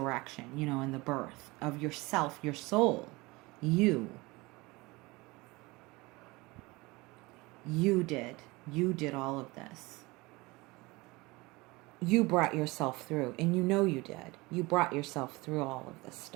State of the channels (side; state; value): left; quieter; 23.2 dB